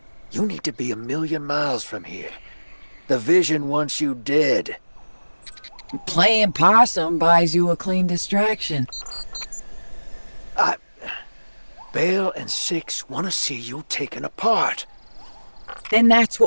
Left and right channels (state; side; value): inverted; both; correlation -1.00